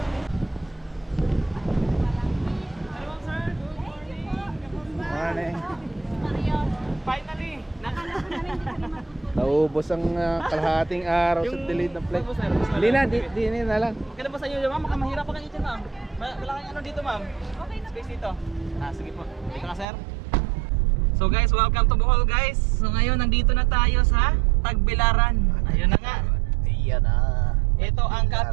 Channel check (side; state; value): left; drops out; at 19.9 s